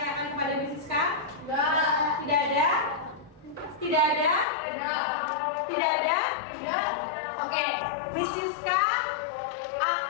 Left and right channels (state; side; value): drops out; right; at 4.5 s